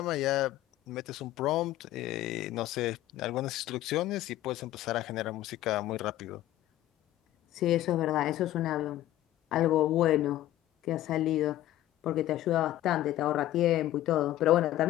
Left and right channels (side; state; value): right; quieter; 14.2 dB